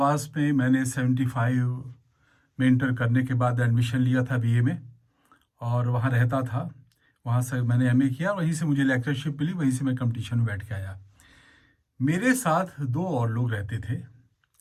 में मैंने 75 में इंटर करने के बाद एडमिशन लिया था बीए में, और वहाँ रहता था। वहाँ से मैंने एमए किया, वहीं से मुझे लेक्चरशिप मिली, वहीं से मैं कंपटीशन में बैठ के आया। मेरे साथ दो और लोग रहते थे,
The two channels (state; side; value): identical; both; correlation 1.00